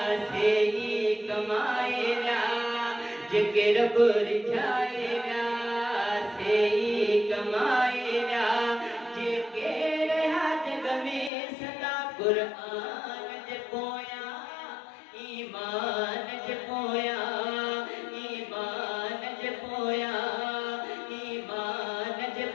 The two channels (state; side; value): drops out; right; at 11.3 s